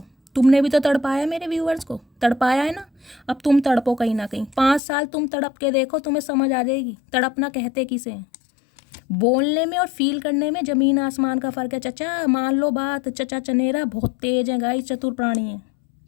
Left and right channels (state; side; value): drops out; right; at 4.8 s